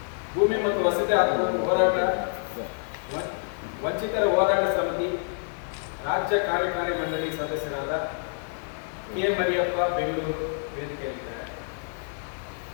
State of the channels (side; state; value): right; silent; digital silence